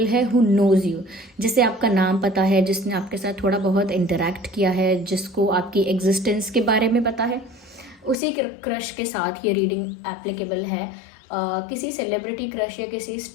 है हु नोज़ यू, जिसे आपका नाम पता है, जिसने आपके साथ थोड़ा बहुत इंटरेक्ट किया है, जिसको आपकी एग्जिस्टेंस के बारे में पता है, उसी क्रश के साथ ये रीडिंग एप्लीकेबल है। किसी सेलिब्रिटी क्रश या किसी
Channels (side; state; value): right; drops out; at 8.2 s